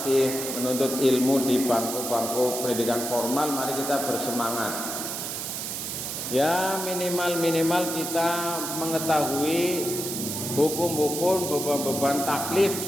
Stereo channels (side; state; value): right; noise; hiss, 4 dB below the sound